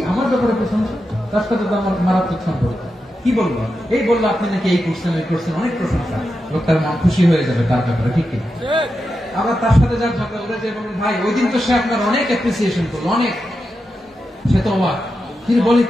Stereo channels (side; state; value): both; normal; correlation 0.89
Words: আমার ব্যাপারে প্রশংসা? তার সাথে তো আমার মারাত্মক সম্পর্ক। কি বলবো? এই বললো আপনি নাকি এই করছেন, ওই করছেন, অনেক প্রশংসা। লোকটার মন খুশি হয়ে যাবে তার ব্যাপারে, ঠিক কিনা? আবার তার সাথে যার ঝগড়া উঠে যে বলবেন ভাই, ওই দিন তো সে আপনার অনেক অ্যাপ্রিসিয়েশন করলো, অনেক। সে তো অবাক, তিনি বলে